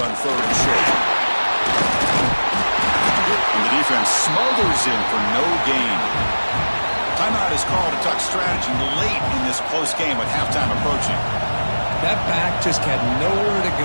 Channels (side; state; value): both; inverted; correlation -1.00